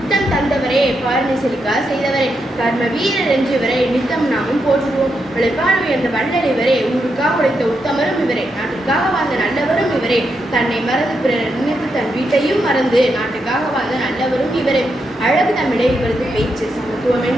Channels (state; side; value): normal; both; correlation 0.83